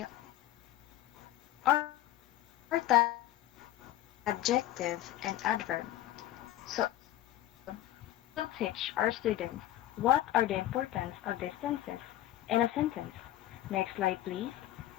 our topic is adjective and adverb. So in this episode, we will teach our students what are the importance of these tenses in a sentence. Next slide, please.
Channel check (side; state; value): right; quieter; 14.0 dB